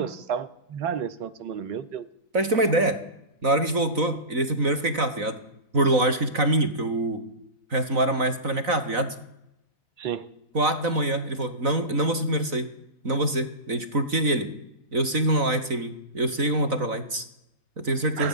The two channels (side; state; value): left; late; 4.0 ms